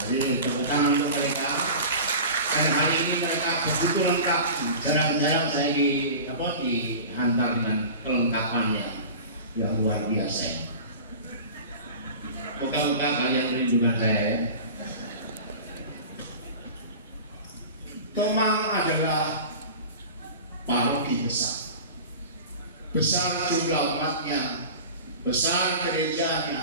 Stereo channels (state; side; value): inverted; both; correlation -0.35